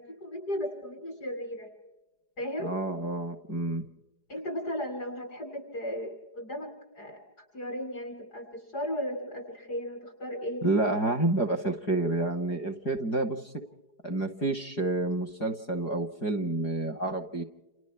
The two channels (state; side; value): late; right; 4.9 ms